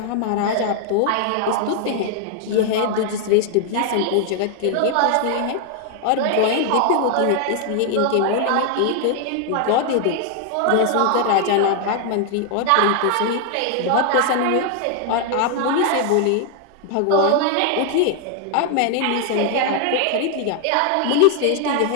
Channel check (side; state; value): both; different; correlation 0.00